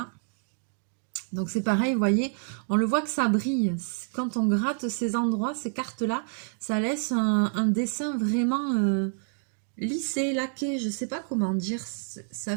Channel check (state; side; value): silent; left; 59 dB below the other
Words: Donc c'est pareil, vous voyez, on le voit que ça brille. Quand on gratte ces endroits, ces cartes-là, ça laisse un dessin vraiment lissé, laqué, je ne sais pas comment dire. Ça